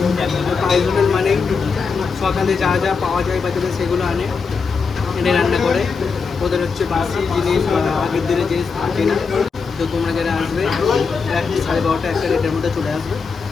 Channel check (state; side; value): quieter; right; 5.2 dB